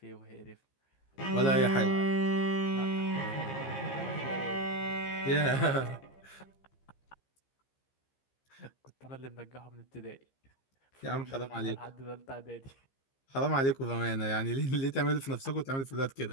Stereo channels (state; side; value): late; right; 15 ms